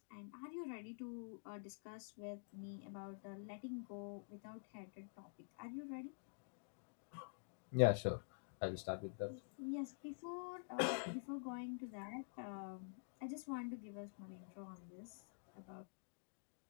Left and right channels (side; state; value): right; silent; digital silence